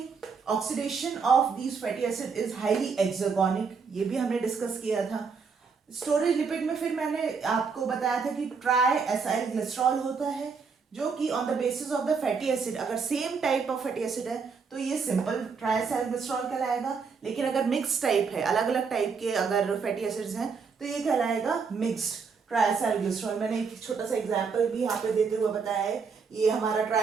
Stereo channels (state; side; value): quieter; left; 5.4 dB